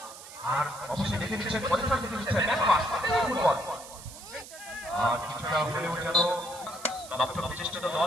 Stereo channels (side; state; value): right; noise; hiss, 15 dB below the sound